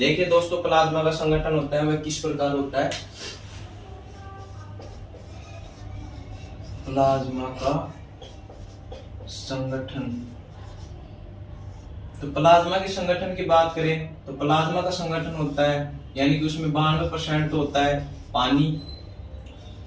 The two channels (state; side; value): identical; both; correlation 1.00